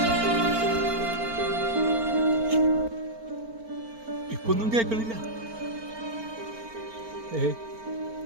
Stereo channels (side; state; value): left; late; 4.4 ms